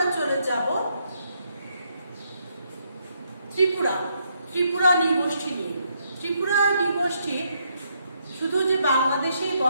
চলে যাব ত্রিপুরা নৃগোষ্ঠী নিয়ে। ত্রিপুরা নৃগোষ্ঠী শুধু যে বাংলাদেশেই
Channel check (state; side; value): inverted; both; correlation -0.75